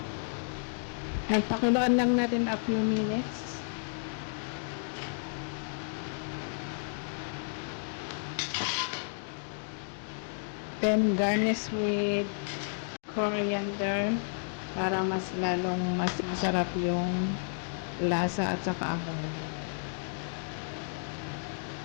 At pakuluan lang natin a few minutes. Then garnish with coriander para mas lalong mas masarap yung lasa at saka amoy.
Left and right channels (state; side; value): silent; right; digital silence